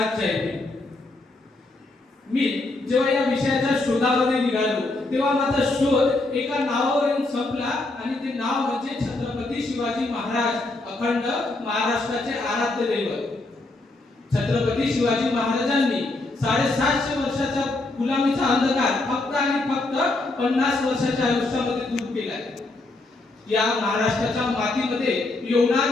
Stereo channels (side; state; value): right; quieter; 3.0 dB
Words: जय भीम. मी जेव्हा या विषयाच्या शोधामध्ये निघालो तेव्हा माझा शोध एका नावावर येऊन संपला आणि ते नाव म्हणजे छत्रपती शिवाजी महाराज, अखंड महाराष्ट्राचे आराध्य दैवत. छत्रपती शिवाजी महाराजांनी 750 वर्षाचा गुलामीचा अंधकार फक्त आणि फक्त 50 वर्षाच्या आयुष्यामध्ये दूर केलाय. या महाराष्ट्राच्या मातीमध्ये